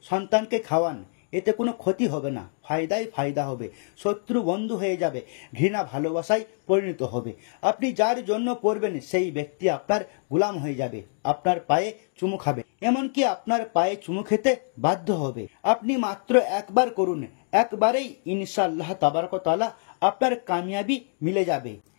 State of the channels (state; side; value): silent; right; 56 dB below the other